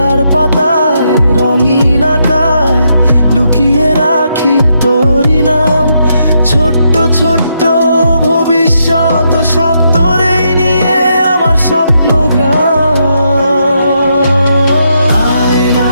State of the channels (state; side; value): inverted; both; correlation -0.79